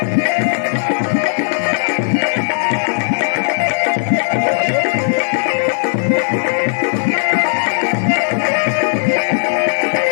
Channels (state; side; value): silent; right; 67 dB below the other